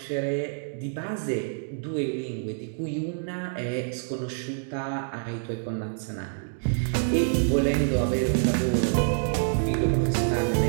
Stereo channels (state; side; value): silent; left; digital silence